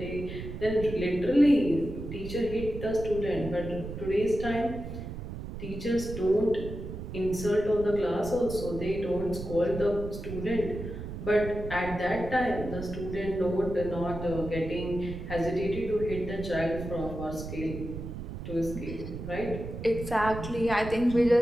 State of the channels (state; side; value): noise; right; rumble, 8 dB below the sound